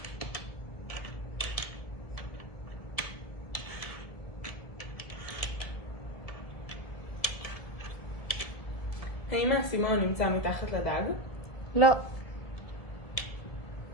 האם האסימון נמצא מתחת לדג? לא.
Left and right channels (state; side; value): late; right; 1.7 ms